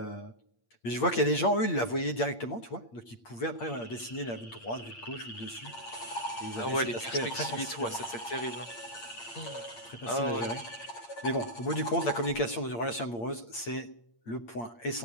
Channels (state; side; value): late; right; 8.6 ms